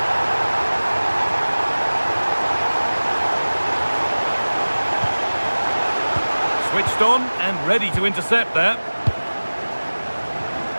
Switched on and ready to intercept there.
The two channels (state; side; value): inverted; both; correlation -1.00